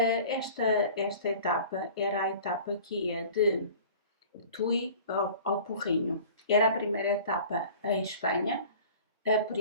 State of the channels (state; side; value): inverted; both; correlation -0.44